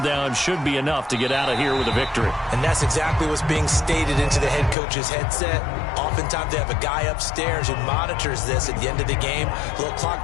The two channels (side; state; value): right; drops out; at 4.8 s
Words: should be enough to get out of here with a victory. And that's exactly what's being stated into the head coach's headset. Oftentimes they have a guy upstairs who monitors this at the end of the game. A little clock